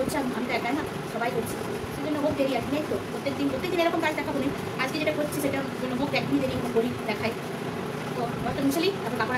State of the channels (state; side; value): identical; both; correlation 1.00